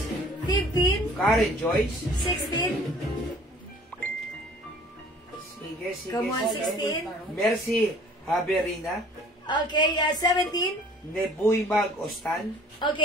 15. Karen Joyce. 16. Sige. Come on, sige. 16. Mercy Haberina. Okay, 17. Nebuy Mag Ostan.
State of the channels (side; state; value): both; normal; correlation 0.51